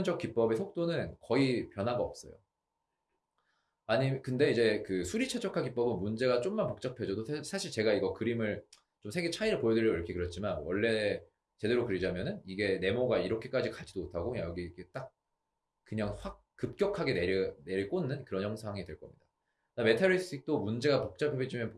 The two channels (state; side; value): identical; both; correlation 1.00